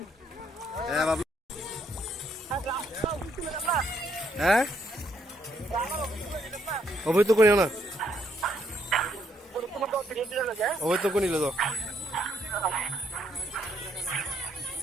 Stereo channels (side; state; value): both; normal; correlation 0.72